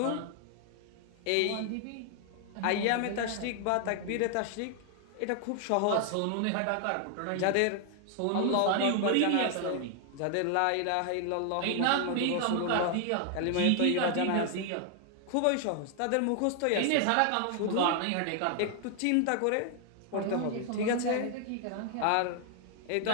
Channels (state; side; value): different; both; correlation 0.00